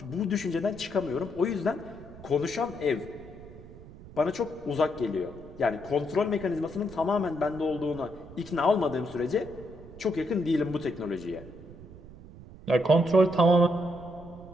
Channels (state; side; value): noise; right; rumble, 17 dB below the sound